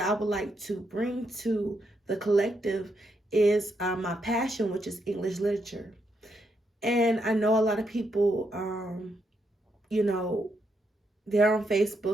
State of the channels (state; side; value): normal; both; correlation 0.79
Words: I would like to bring to the collective is my passion, which is English literature. And I know a lot of people, you know, they're on